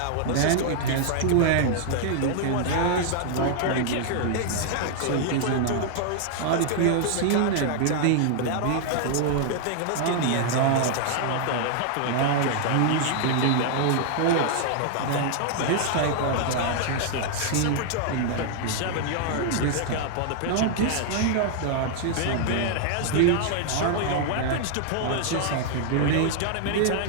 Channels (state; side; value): different; both; correlation 0.00